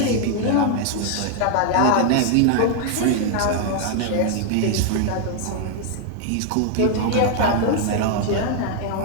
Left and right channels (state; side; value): different; both; correlation 0.00